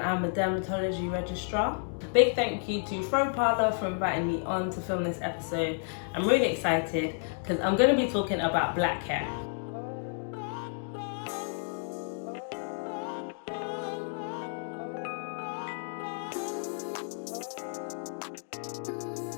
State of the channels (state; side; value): silent; right; 57 dB below the other